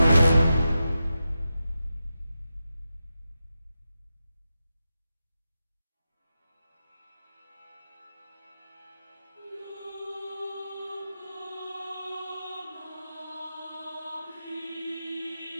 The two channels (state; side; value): inverted; both; correlation -0.90